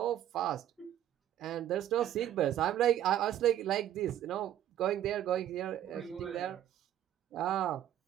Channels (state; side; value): quieter; left; 11.7 dB